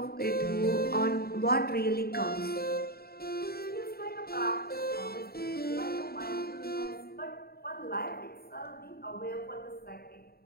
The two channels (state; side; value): late; right; 0.45 ms